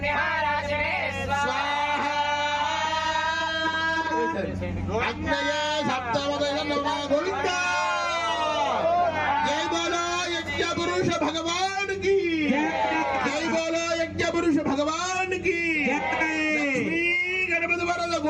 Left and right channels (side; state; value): both; identical; correlation 1.00